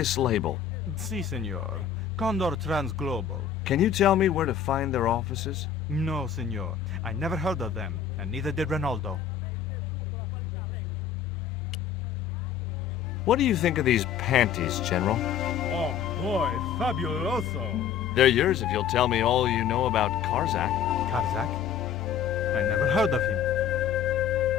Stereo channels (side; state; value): right; quieter; 8.2 dB